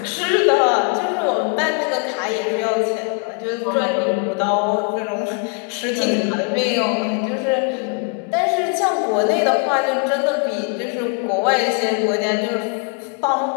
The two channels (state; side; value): quieter; right; 35.8 dB